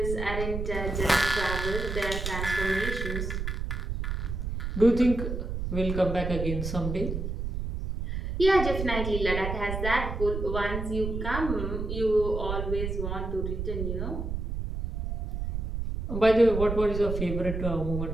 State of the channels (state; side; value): noise; right; rumble, 3 dB below the sound